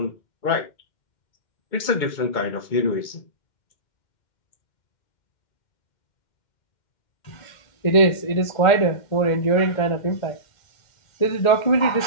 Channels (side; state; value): right; late; 2.1 ms